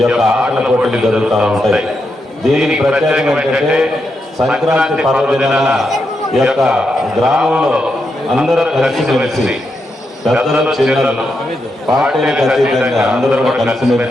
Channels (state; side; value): normal; both; correlation 0.84